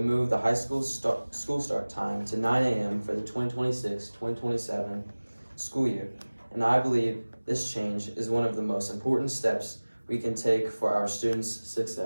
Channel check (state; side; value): inverted; both; correlation -1.00